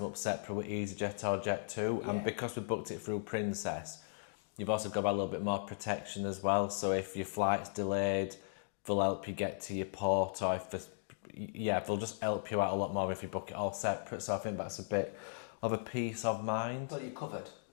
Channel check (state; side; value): silent; right; digital silence